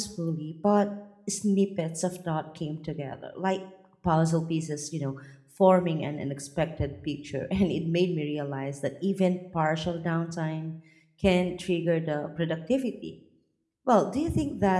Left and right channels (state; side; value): identical; both; correlation 1.00